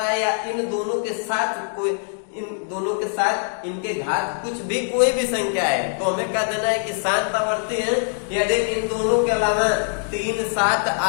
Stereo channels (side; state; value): right; silent; 64 dB below the other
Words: है, या इन दोनों के साथ कोई, इन दोनों के साथ इनके घात कुछ भी कोई भी संख्या है, तो हमें कह देना है कि शांत आवर्ती है। यदि इन दोनों के अलावा 3 7